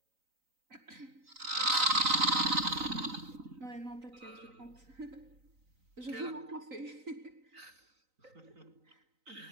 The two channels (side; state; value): left; late; 3.9 ms